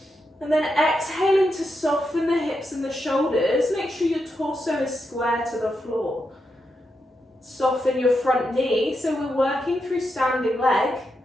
and then exhaling to soften the hips and the shoulders? Make sure your torso is square to the floor. Soften your front knee, so we're working through standing leg.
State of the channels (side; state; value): both; normal; correlation 0.85